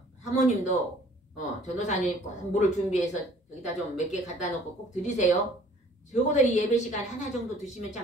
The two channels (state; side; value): normal; both; correlation 0.54